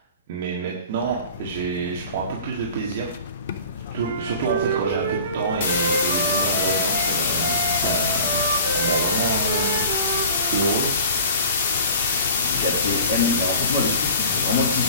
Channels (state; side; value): inverted; both; correlation -0.42